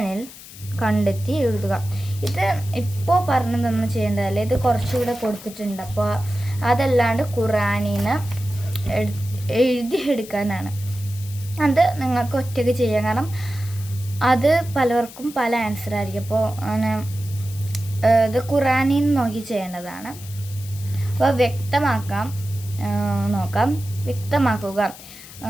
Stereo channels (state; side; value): noise; left; hiss, 17 dB below the sound